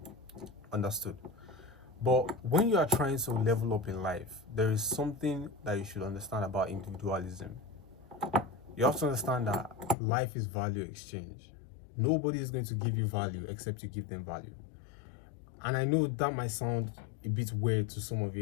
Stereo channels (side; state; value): right; drops out; at 10.0 s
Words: Understood. But when you are trying to level up in life, there is something that you should understand about individualism. You have to understand that life is value exchange. Nobody is going to give you value except you give them value. And I know that might sound a bit weird to some of